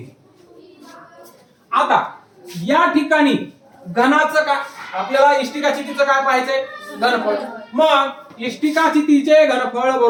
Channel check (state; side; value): identical; both; correlation 1.00